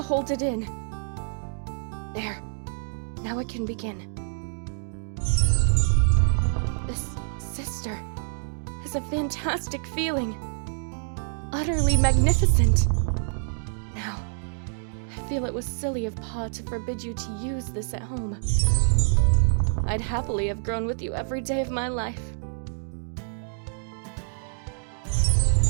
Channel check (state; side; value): silent; left; digital silence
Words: hold it in. There. Now it can begin. This sister is a fantastic feeling. Utterly magnificent. Now, I feel it was silly of Pa to forbid you to use this at home. I'd happily have grown with you every day of my life.